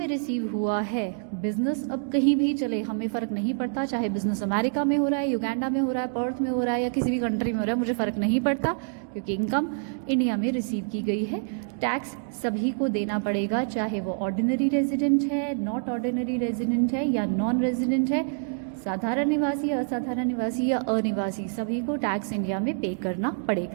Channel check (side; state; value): left; silent; digital silence